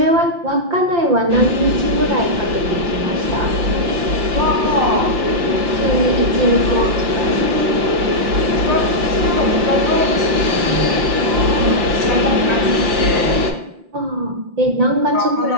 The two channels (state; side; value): late; left; 5.8 ms